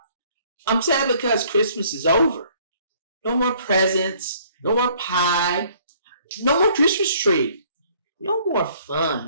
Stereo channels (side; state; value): both; inverted; correlation -0.60